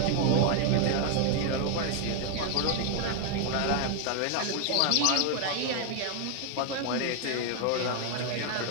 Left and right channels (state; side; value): different; both; correlation 0.00